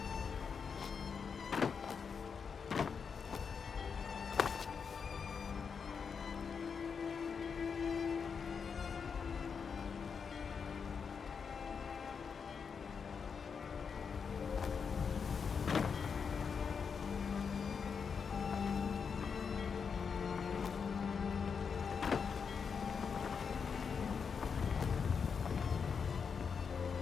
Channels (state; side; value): quieter; right; 6.1 dB